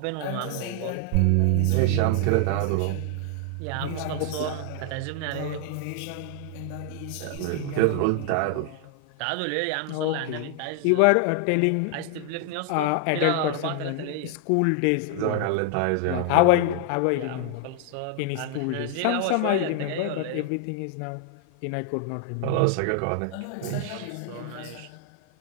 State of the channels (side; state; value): both; different; correlation 0.00